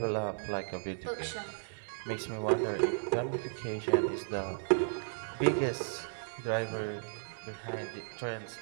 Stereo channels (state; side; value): silent; left; 55 dB below the other